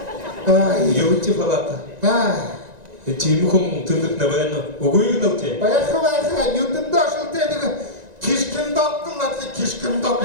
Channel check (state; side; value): late; left; 1.9 ms